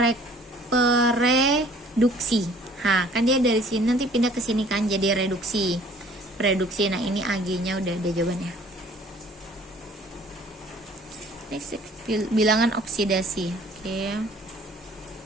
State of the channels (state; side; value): normal; both; correlation 0.54